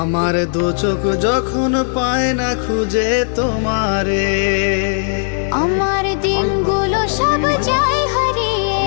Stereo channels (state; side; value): silent; right; digital silence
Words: দু চোখ যখন পায় না খুঁজে তোমারে। আমার দিনগুলো সব যায় হারিয়ে